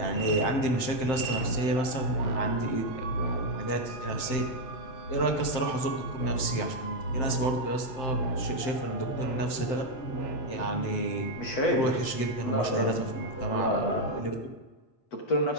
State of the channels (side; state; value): right; late; 7.7 ms